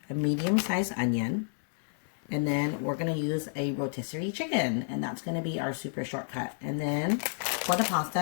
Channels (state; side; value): silent; right; digital silence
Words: a medium-sized onion, and then we're going to use a rotisserie chicken, and that's going to be our super shortcut. And then for the